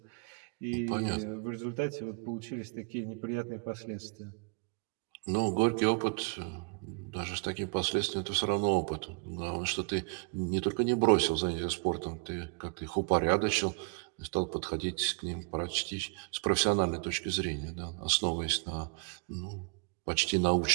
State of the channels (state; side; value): quieter; left; 34.1 dB